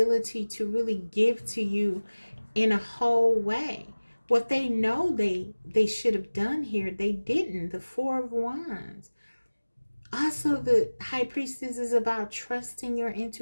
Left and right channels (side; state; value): both; inverted; correlation -1.00